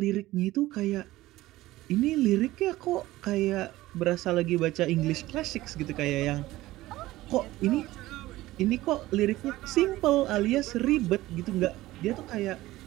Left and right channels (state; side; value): quieter; left; 17.1 dB